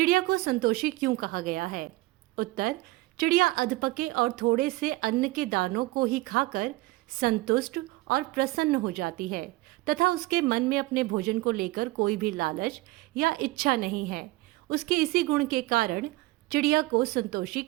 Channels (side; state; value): left; quieter; 20.1 dB